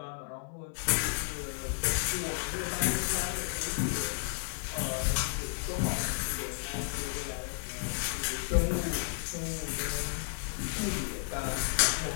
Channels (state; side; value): silent; right; 56 dB below the other